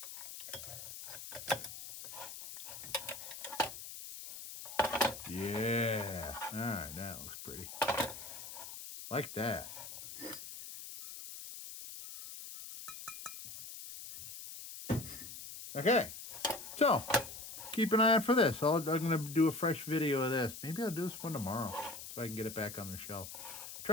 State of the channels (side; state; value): left; noise; hiss, 11 dB below the sound